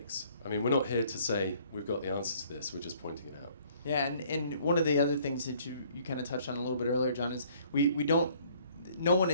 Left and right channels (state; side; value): inverted; both; correlation -0.59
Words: We're not here to say we've got the answer to this, we're just pointing it out. Yeah, and one of the other things that you kind of touched on a little bit earlier, John, is no one